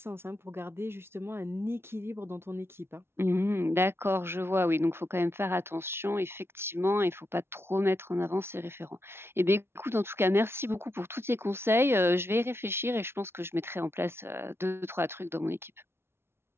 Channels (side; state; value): left; late; 0.12 ms